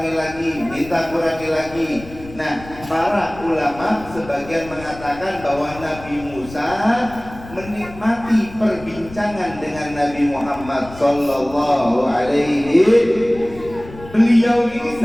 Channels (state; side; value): noise; left; rumble, 17 dB below the sound